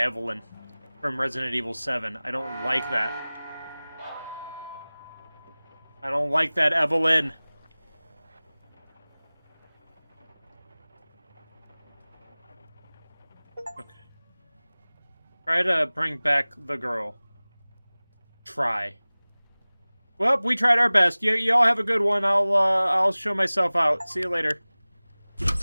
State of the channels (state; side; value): inverted; both; correlation -0.99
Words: from Resident Evil 7. I don't like that. I don't like that, Evelyn. Okay. Try to bring back the girl. Try. Well, we tried our best. You all have a good one. I'll show myself out. See you later.